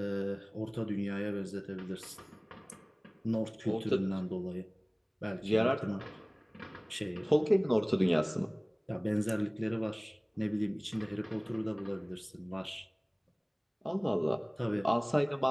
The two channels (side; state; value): both; identical; correlation 1.00